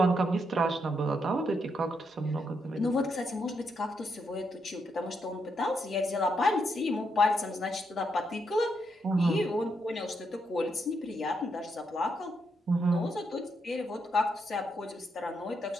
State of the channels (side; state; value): both; normal; correlation 0.79